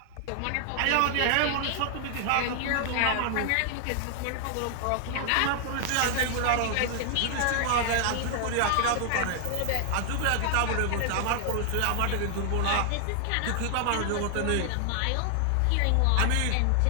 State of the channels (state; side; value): different; both; correlation -0.01